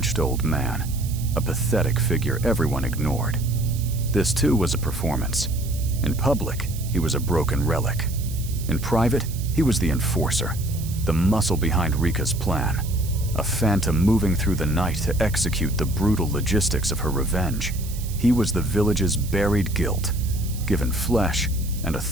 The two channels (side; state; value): right; noise; hiss, 14 dB below the sound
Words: old man, a pathetic figure everyone ignored. This too was a performance. In public, he was a broken relic. In private, he was the enforcer, the muscle behind Rika's plan, a phantom moving through the night to execute the brutal logistics of her revenge. He was the village's buried guilt, given flesh and a